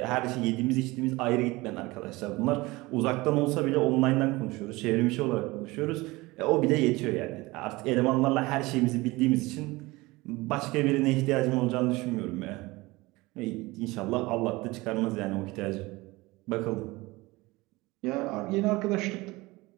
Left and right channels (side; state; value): left; quieter; 21.6 dB